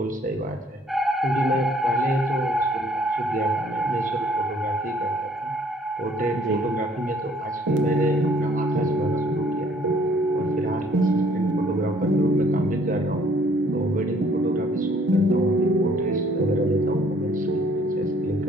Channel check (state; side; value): normal; both; correlation 0.60